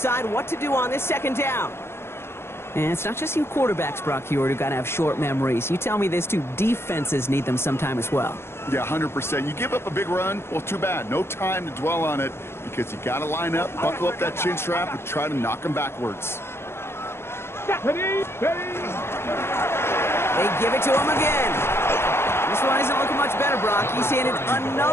what to do on this 2nd down. And it's not just you quarterbacks, Brock Hewitt, who got to have short memories. You tell me this too, defenses need them sometime as well. Yeah, 100%. You give up a big run, well, too bad. No time to dwell on it because you got to line up, buckle up that chin strap, and try to knock them backwards. Ready, ready. They give it to him again. This one isn't looking much better, Brock. He's handed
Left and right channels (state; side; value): late; right; 0.12 ms